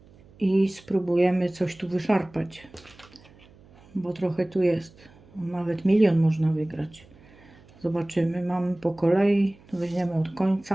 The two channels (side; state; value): right; noise; hum, 26 dB below the sound